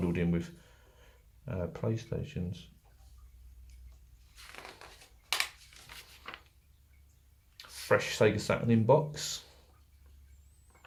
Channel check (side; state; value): both; identical; correlation 1.00